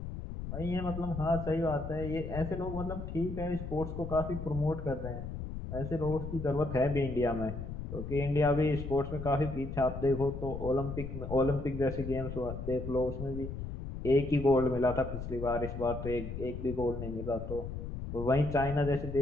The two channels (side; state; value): left; noise; rumble, 7 dB below the sound